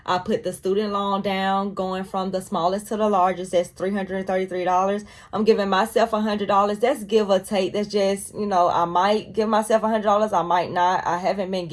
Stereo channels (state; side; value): identical; both; correlation 1.00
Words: I put the student loan down, going from the smallest to the largest. That's $333. I'm giving myself $100. That's give or take. That's just, I might give myself $100. I might not. I haven't been